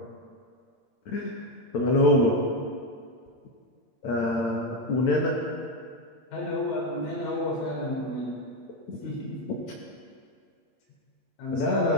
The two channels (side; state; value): right; late; 9.0 ms